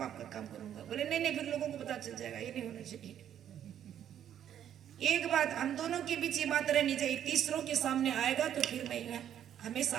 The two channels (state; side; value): quieter; left; 10.1 dB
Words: आपका काम करूंगा। बोले नहीं नहीं, फिर लोगों को पता चल जाएगा, ये नहीं होना चाहिए। एक बात हम दोनों के बीच ये बात रहनी चाहिए, तीसरों के सामने आएगा तो फिर मैं हमेशा